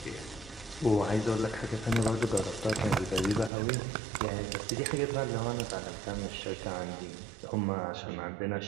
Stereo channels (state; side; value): drops out; left; at 3.5 s